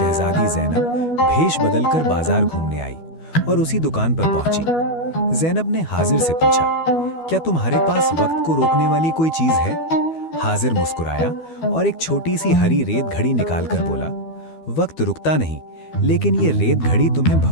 ज़ैनब भेष बदलकर बाजार घूमने आई और उसी दुकान पर पहुंची। ज़ैनब ने हाजिर से पूछा, क्या तुम्हारे पास वक्त को रोकने वाली कोई चीज है? हाजिर मुस्कुराया और एक छोटी सी हरी रेत घड़ी निकालकर बोला, वक्त रुकता नहीं, लेकिन ये रेत घड़ी तुम्हें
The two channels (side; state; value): right; late; 12 ms